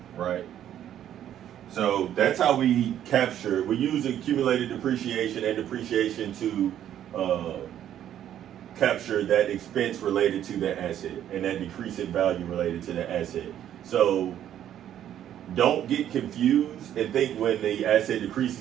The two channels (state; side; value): quieter; left; 10.8 dB